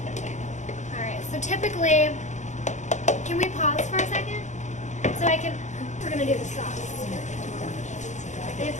All right. So typically, can we pause for a second? So I can. We're gonna do the sauce. If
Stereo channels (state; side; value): late; right; 0.35 ms